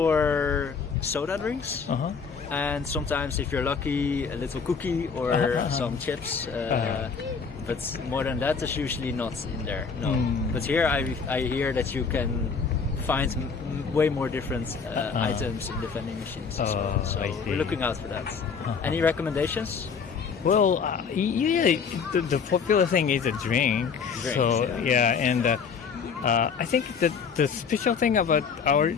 soda drinks. And sometimes, if you're lucky, a little cookie or some chips. But more than that, there's usually not in there. No. But here, I hear that you can find way more different items in the vending machines as well. So we're looking out for that. Any recommendations? Well, the popular thing is a drink. So and I think that the special thing about our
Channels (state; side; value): quieter; right; 5.8 dB